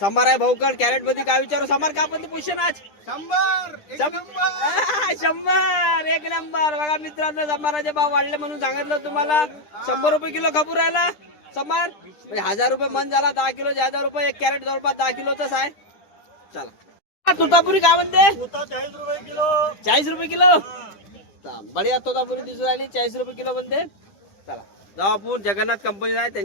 आहे भाऊकड. कॅरेट मध्ये काय विचारू? संभार का पण पोझिशन आज 100 एक नंबर. बघा मित्रांनो संभाराचे भाव वाढले म्हणून सांगितलं तुम्हाला. 100 रुपये किलो खपूर राहिला संभार. 1000 रुपये मन झाला. 10 किलो 1000 रुपये. एक कॅरेट जवळपास 10 किलोचाच आहे. चला तोतापुरी काय म्हणते? 40 रुपये किलो. 40 रुपये किलो. बढिया तोतापुरी दिसून राहिली 40 रुपये किलो म्हणते. चला जाऊ आपण. जगन्नाथ कंपनी आहे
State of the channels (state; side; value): late; right; 10 ms